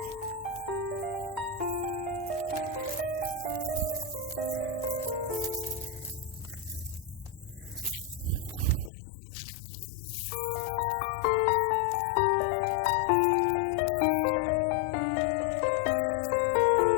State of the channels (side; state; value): right; drops out; at 8.9 s